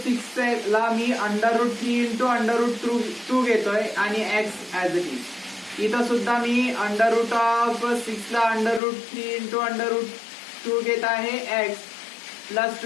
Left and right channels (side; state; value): right; drops out; at 8.8 s